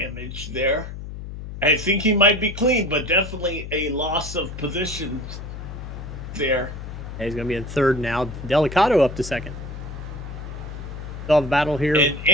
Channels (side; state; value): left; noise; hum, 9 dB below the sound